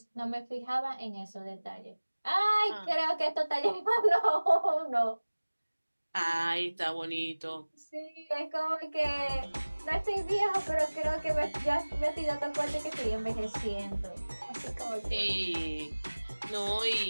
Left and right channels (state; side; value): inverted; both; correlation -1.00